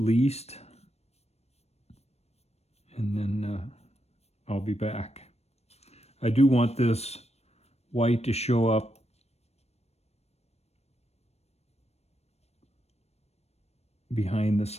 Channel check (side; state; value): right; late; 0.31 ms